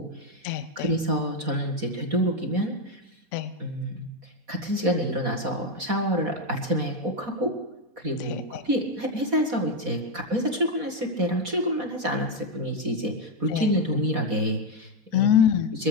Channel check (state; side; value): late; left; 4.1 ms